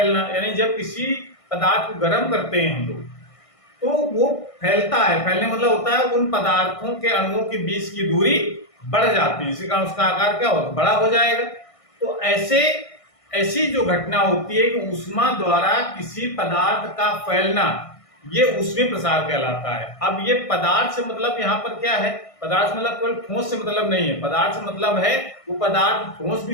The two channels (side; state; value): right; late; 1.6 ms